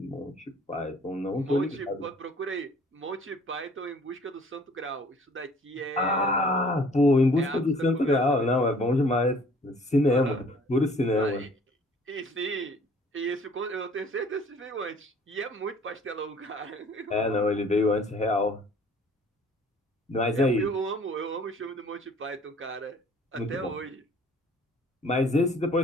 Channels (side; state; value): both; normal; correlation 0.54